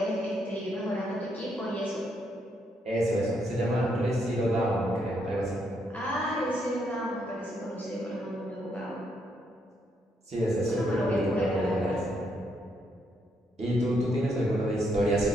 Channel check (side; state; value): both; normal; correlation 0.76